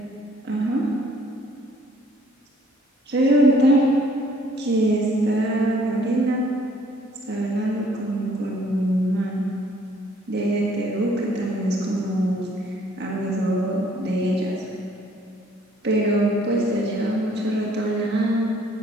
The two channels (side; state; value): both; normal; correlation 0.61